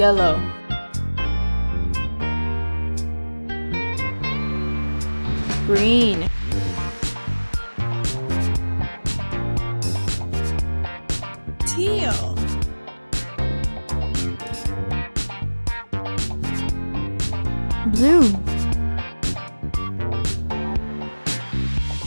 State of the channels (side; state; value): both; inverted; correlation -1.00